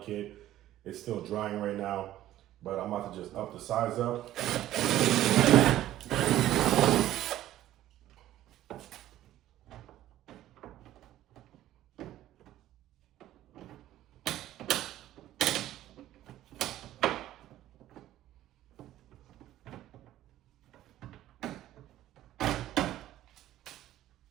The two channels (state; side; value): quieter; left; 13.7 dB